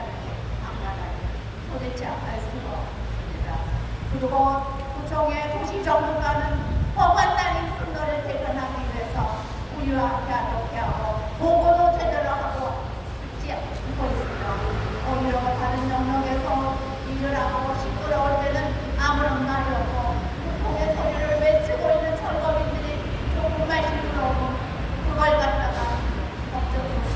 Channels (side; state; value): both; identical; correlation 1.00